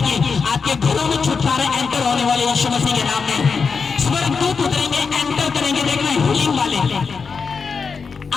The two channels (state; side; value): quieter; right; 5.3 dB